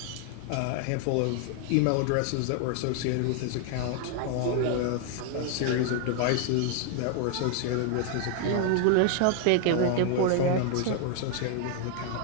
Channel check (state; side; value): different; both; correlation 0.00